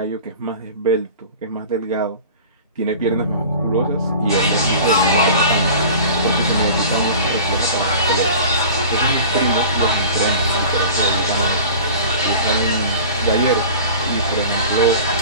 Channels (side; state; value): both; inverted; correlation -0.39